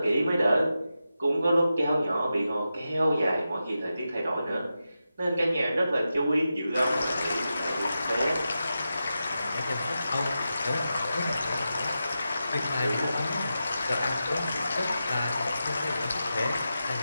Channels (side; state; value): both; inverted; correlation -0.90